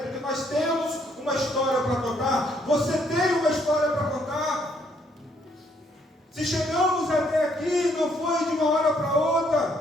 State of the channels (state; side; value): normal; both; correlation 0.69